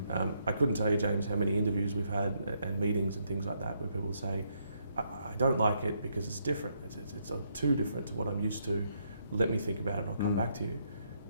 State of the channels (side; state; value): both; inverted; correlation -0.75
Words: I couldn't tell you, James, how many interviews we've had and meetings and things like that where people say, I don't like it because it's different. It's too different to what I'm used to. Let me think about it and I'll come back to you.